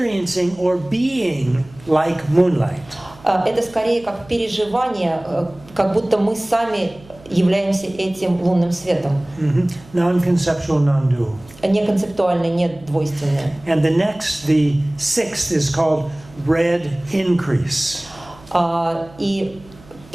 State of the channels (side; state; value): right; noise; hum, 23 dB below the sound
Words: or being like moonlight. Это скорее как переживание, как будто мы сами являемся этим лунным светом. Non-conceptual, non-dual. Не концептуальное, не двойственное. And the sixth is called red increase. И